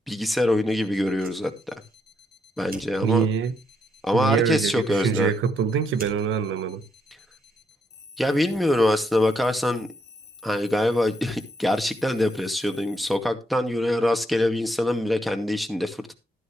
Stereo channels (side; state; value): both; normal; correlation 0.77